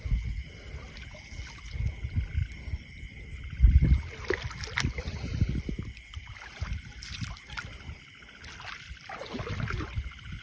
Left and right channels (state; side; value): identical; both; correlation 1.00